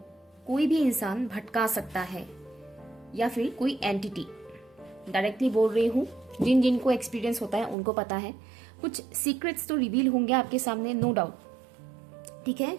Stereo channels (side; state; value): left; drops out; at 7.8 s